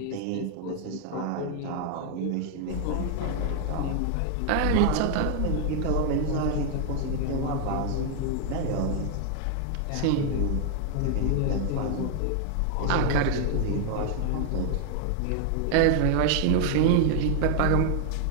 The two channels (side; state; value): both; different; correlation 0.00